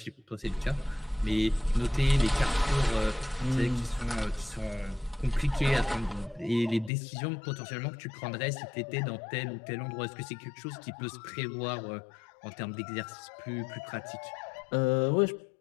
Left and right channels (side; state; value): right; drops out; at 6.9 s